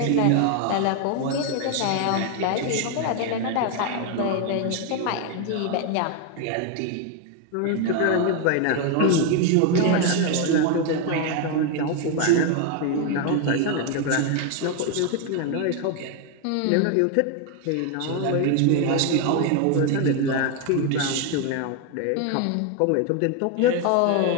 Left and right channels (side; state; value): both; different; correlation 0.01